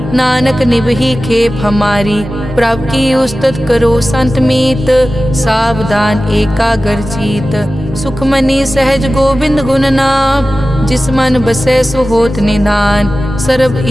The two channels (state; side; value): normal; both; correlation 0.95